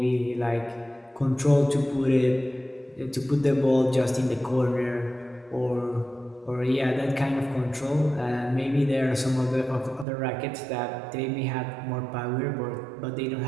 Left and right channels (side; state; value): left; drops out; at 10.1 s